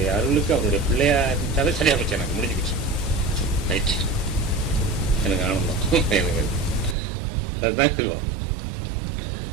அருளுக்கு அவருடைய பிள்ளையா இருந்தாவே சரியாக போச்சு. எனக்கு முடிஞ்சுக்கிச்சு. ரைட், எனக்கு ஆனந்தம். எனக்கு அதுதான் சொல்லுவோம்.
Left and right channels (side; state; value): left; drops out; at 7.0 s